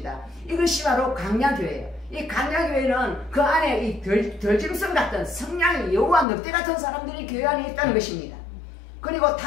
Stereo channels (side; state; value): right; drops out; at 6.2 s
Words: 이것이 바로 강야교회예요. 이 강야교회는 그 안에 이 덜짐승 같은 성량이 여우와 늑대 같은 사람들이 교회 안에 있다는 것입니다. 그리고